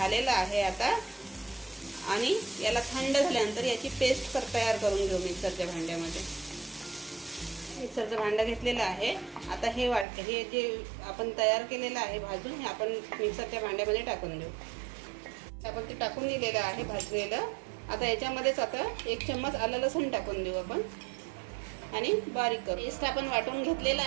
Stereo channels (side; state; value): left; drops out; at 10.1 s